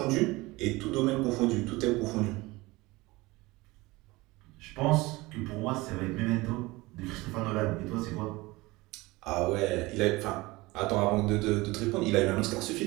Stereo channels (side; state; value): left; quieter; 21.5 dB